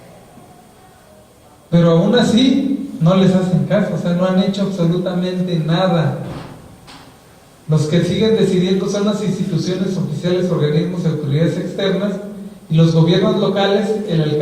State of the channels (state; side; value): identical; both; correlation 1.00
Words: Pero aún así no les hacen caso, o sea, no han hecho absolutamente nada. Los que siguen decidiendo son las instituciones oficiales, organismos y autoridades externas, y los gobiernos locales. El